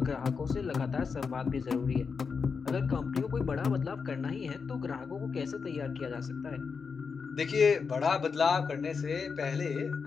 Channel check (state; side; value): quieter; right; 5.5 dB